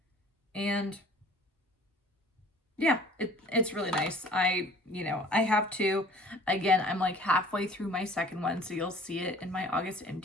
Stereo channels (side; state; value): both; normal; correlation 0.50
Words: And yeah, it's really nice. I have 2. Again, I'm like halfway through my second one, so you'll see it in my August